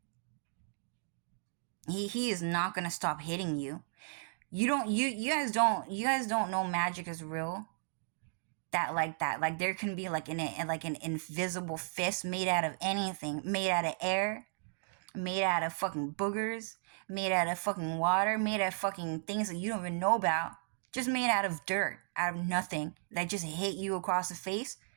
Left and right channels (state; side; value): silent; left; digital silence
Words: He is not gonna stop hitting you. You guys don't know magic is real. Like there can be like an invisible fist made out of anything, made out of air, made out of fucking boogers, made out of fucking water, made out of fucking things that you don't even know about, just made out of dirt, out of nothing, that just hit you across the face.